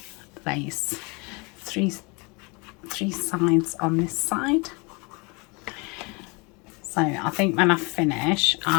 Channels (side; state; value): right; quieter; 29.5 dB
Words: lace, three sides on this side. So I think when I finish,